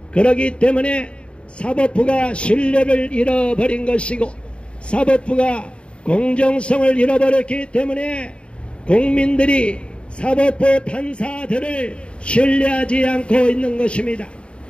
그렇기 때문에 사법부가 신뢰를 잃어버린 것이고 사법부가 공정성을 잃어버렸기 때문에 국민들이 사법부 판사들을 신뢰하지 않고 있는 것입니다.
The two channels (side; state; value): right; late; 0.056 ms